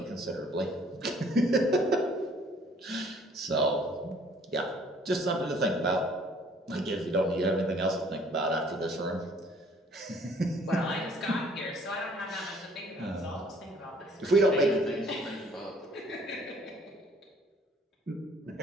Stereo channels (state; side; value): normal; both; correlation 0.58